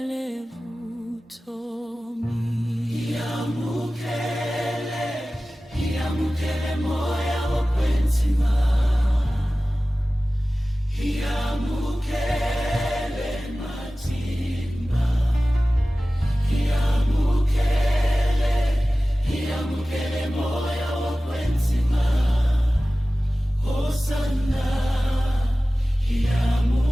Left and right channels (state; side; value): normal; both; correlation 0.96